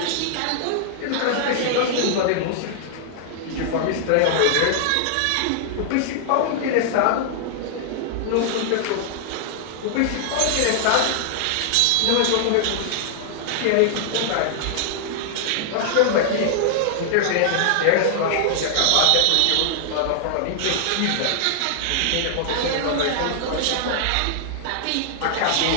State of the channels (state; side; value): different; both; correlation -0.01